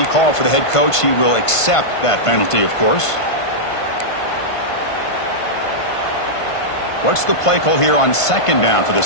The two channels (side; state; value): right; late; 1.5 ms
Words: call for the head coach. He will accept that penalty, of course. What's the play call here on second down for